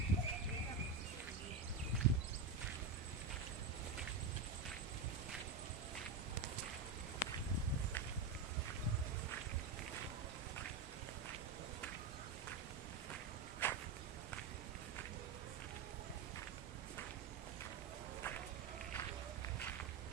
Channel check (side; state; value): left; quieter; 4.4 dB